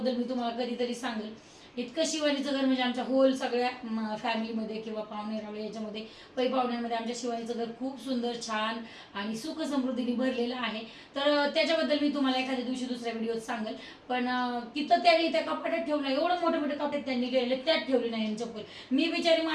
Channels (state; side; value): identical; both; correlation 1.00